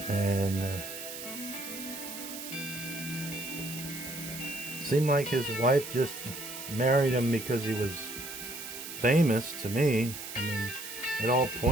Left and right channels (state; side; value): noise; right; hiss, 9 dB below the sound